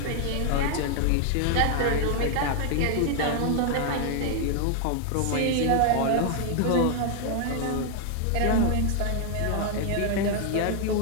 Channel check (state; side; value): different; both; correlation 0.00